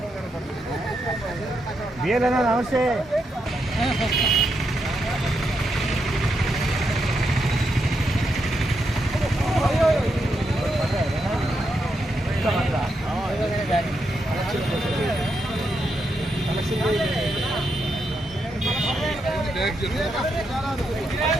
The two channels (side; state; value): both; normal; correlation 0.82